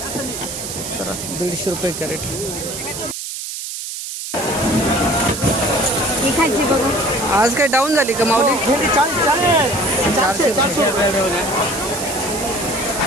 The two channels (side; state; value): right; noise; hiss, 7 dB below the sound